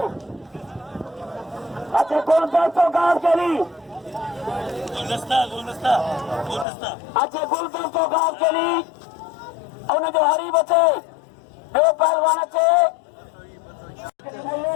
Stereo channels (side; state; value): right; drops out; at 6.7 s